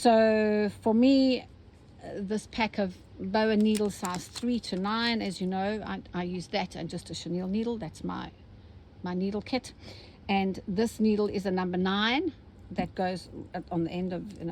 for me, this pack of boa needle size 3 to 9, as you know, I use that and just a chenille needle. That's my needle kit. And this needle is a number 9. That goes on the end of,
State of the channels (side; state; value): both; identical; correlation 1.00